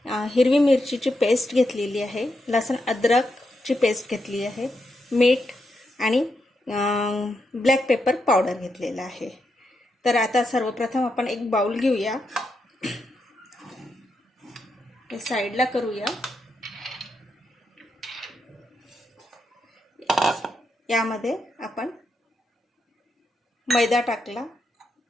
हिरवी मिरचीची पेस्ट घेतलेली आहे, लसूण अद्रकची पेस्ट घेतली आहे, मीठ आणि ब्लॅक पेपर पावडर घेतलेला आहे। तर आता सर्वप्रथम आपण एक बाउल घेऊया, हे साईडला करूया। यामध्ये आपण मैदा टाकला,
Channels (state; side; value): normal; both; correlation 0.83